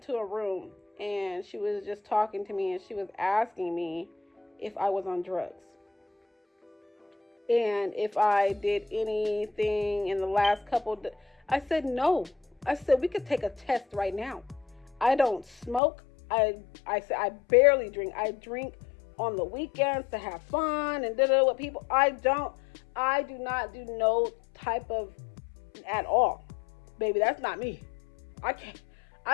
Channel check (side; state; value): right; drops out; at 15.8 s